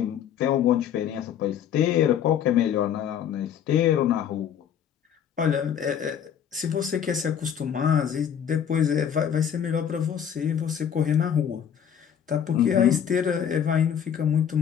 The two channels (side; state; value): right; quieter; 8.8 dB